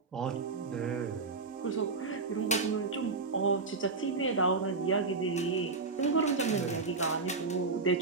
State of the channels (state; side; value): quieter; left; 4.1 dB